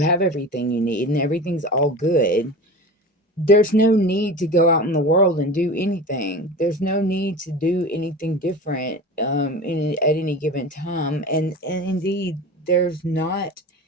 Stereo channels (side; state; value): both; normal; correlation 0.32